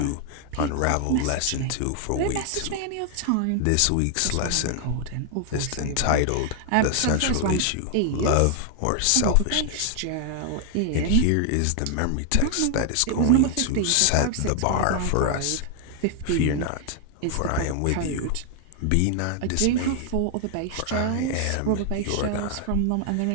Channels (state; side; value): different; both; correlation 0.00